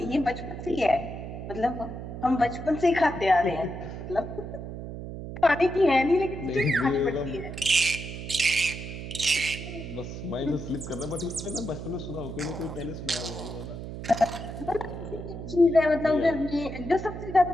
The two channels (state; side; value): noise; right; hum, 8 dB below the sound